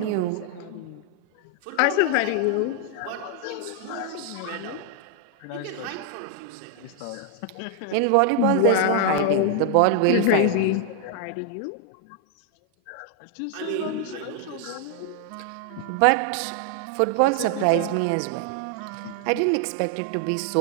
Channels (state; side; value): different; both; correlation 0.00